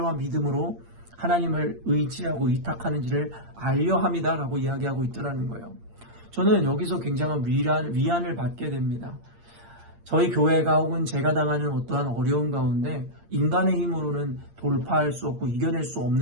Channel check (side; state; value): left; late; 8.7 ms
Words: 믿음으로 하나님을 의지하고 의탁하는지를 알려 함이다라고 이야기하고 있더라는 거예요. 저는 여기서 굉장한 위안을 받게 됩니다. 저희 교회가 혹은 제가 당하는 어떠한 어려움 가운데 인간의 힘으로는 돌파할 수 없고 이겨낼 수